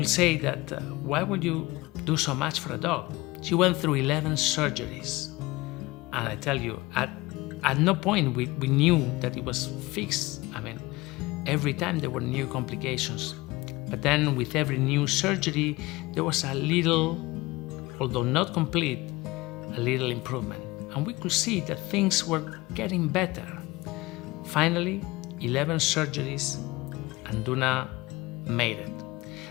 say that, why would you do so much for a dog? She went through 11 surgeries. And I tell you, at no point we knew that it was fixed. I mean, every time there were new complications. But then with every new surgery, there was a little, although not complete, a little improvement. And we could see that things were getting better. Finally, 11 surgeries, and Duna made it.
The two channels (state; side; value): quieter; right; 21.2 dB